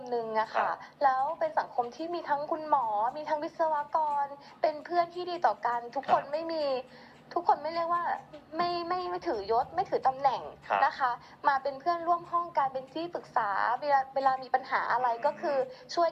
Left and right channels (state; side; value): identical; both; correlation 1.00